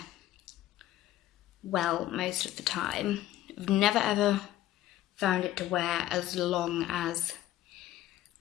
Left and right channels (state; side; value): quieter; right; 14.0 dB